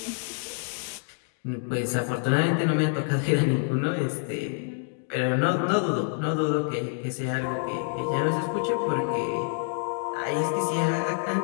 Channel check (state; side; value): silent; right; 57 dB below the other